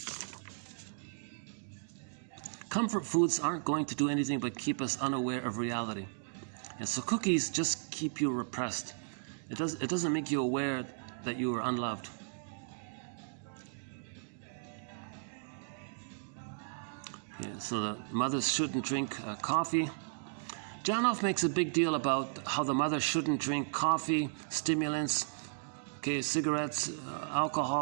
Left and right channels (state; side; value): silent; left; digital silence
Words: Comfort foods aren't going to do anything but keep us unaware of reality. And so cookies just keep you repressed. It doesn't make you aware that you are unloved. Yeah, so the mothers shouldn't drink coffee. Janoff makes a big deal about how the mother shouldn't drink coffee, stimulants, okay, cigarettes,